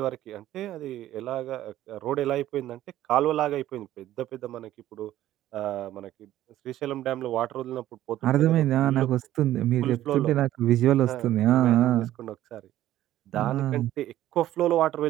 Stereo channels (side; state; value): left; quieter; 13.6 dB